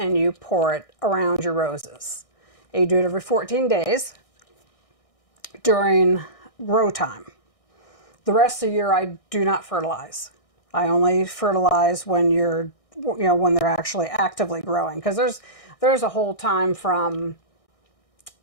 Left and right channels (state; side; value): late; right; 1.6 ms